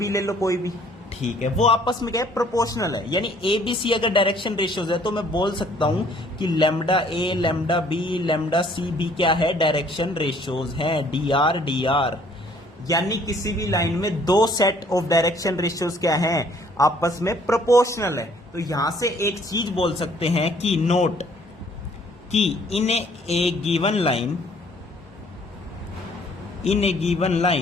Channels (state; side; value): normal; both; correlation 0.60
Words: ले लो कोई भी, ठीक है, वो आपस में क्या है, प्रोपोर्शनल है। यानी ए बी सी अगर डायरेक्शन रेशियोज है तो मैं बोल सकता हूं कि लैम्डा ए, लैम्डा बी, लैम्डा सी भी क्या है, डायरेक्शन रेशियोज हैं, डी आर डी आर। यानी किसी भी लाइन में 2 सेट ऑफ डायरेक्शन रेशियोज क्या हैं, आपस में प्रोपोर्शनल है। तो यहां से एक चीज बोल सकते हैं कि नोट कि in a given